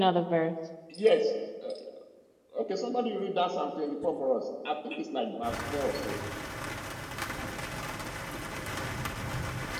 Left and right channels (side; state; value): both; identical; correlation 1.00